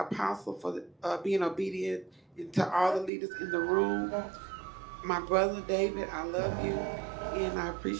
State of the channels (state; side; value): drops out; left; at 3.1 s